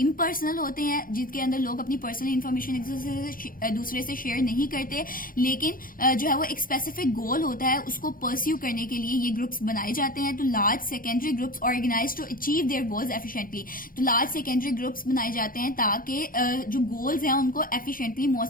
होते हैं, जिनके अंदर लोग अपनी पर्सनल इन्फॉर्मेशन एक दूसरे से शेयर नहीं करते, लेकिन जो है वो एक स्पेसिफिक गोल होता है, उसको परस्यू करने के लिए ये ग्रुप्स बनाए जाते हैं। तो large secondary groups organise to achieve their goals efficiently. तो लार्ज सेकेंडरी ग्रुप्स बनाए जाते हैं ताकि जो गोल्स हैं उनको एफिशिएंटली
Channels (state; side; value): late; right; 0.41 ms